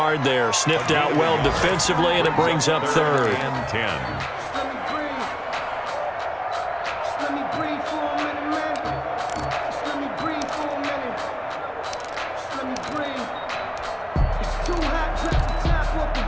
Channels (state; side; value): identical; both; correlation 1.00